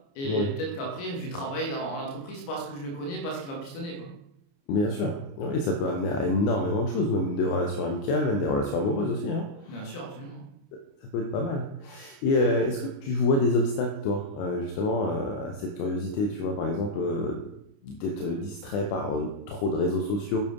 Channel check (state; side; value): late; right; 29 ms